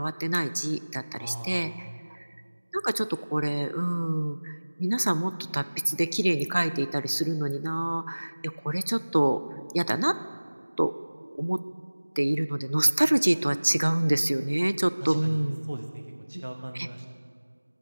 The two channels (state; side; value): inverted; both; correlation -1.00